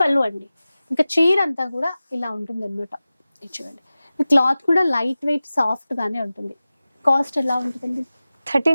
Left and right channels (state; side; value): inverted; both; correlation -0.96